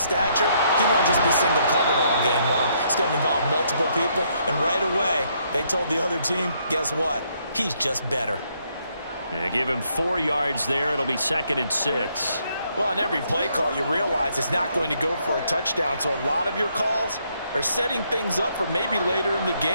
he won't just be single covered all game long. It's going to involve multiple people. And right away, they told the other team, guess what? He's just better. Yeah, give him 4 yards there. It'll be 2nd and 6. Well, on every play call, you realize it's not going to go for a touchdown. So a lot of your calls are setting things up for maybe later in the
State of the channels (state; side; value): inverted; both; correlation -0.72